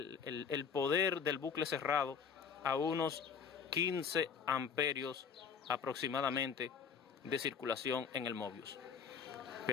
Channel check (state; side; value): quieter; right; 6.4 dB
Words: poder del bucle cerrado a unos 15 amperios aproximadamente de circulación en el Mobius.